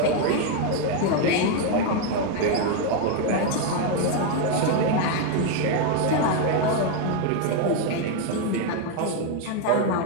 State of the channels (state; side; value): different; both; correlation 0.01